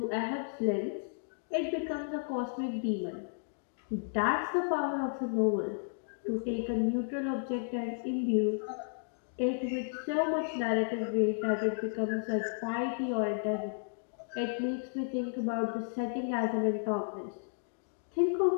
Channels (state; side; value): silent; right; digital silence